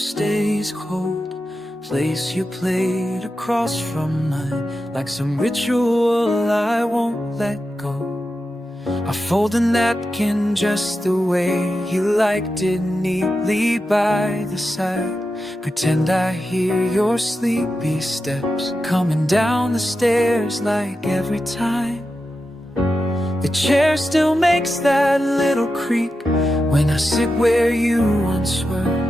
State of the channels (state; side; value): normal; both; correlation 0.90